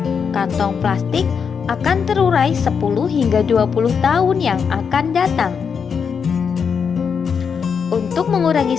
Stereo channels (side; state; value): right; quieter; 6.5 dB